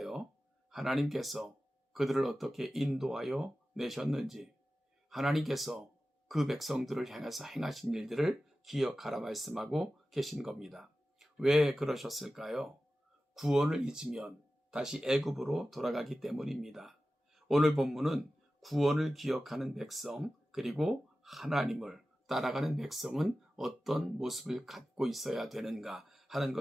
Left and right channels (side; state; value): both; normal; correlation 0.95